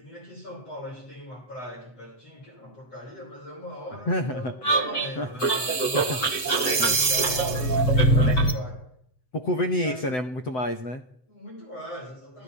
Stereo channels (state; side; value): late; right; 7.9 ms